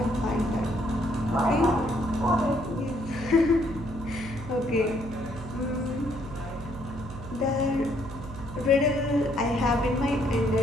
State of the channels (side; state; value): right; noise; hum, 12 dB below the sound